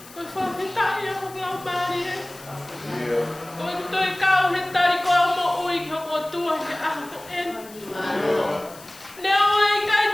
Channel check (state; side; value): noise; left; hiss, 20 dB below the sound